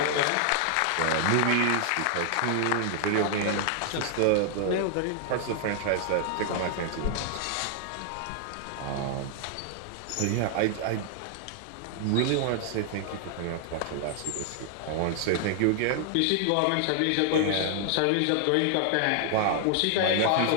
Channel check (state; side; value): different; both; correlation 0.00